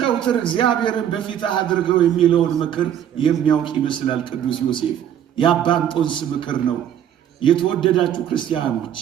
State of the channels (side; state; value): left; quieter; 10.0 dB